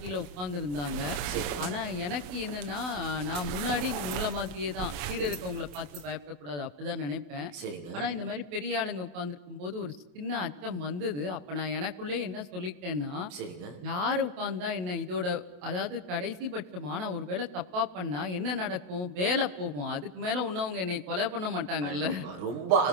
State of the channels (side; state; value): left; late; 28 ms